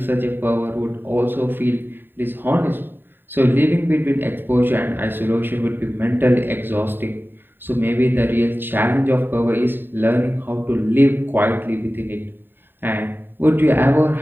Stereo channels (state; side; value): late; left; 0.096 ms